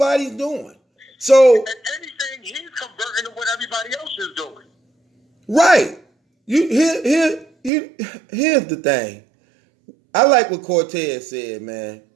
doing. So, And anything, he's converting to what everybody else is doing. right. Here's the thing. I like what Cortez said, man,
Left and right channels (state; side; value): drops out; left; at 7.7 s